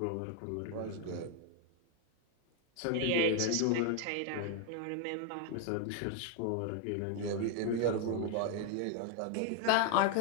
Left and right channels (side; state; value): both; different; correlation 0.01